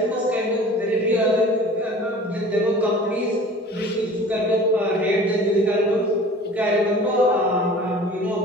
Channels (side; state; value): both; normal; correlation 0.43